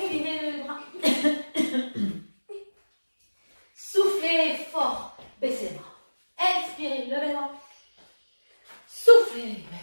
le bras. Soufflez fort. Baissez les bras. Inspirez, levez les bras. Soufflez,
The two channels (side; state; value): both; inverted; correlation -1.00